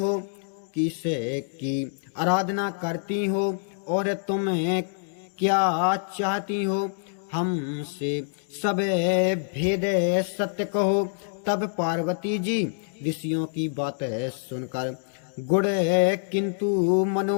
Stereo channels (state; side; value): silent; right; digital silence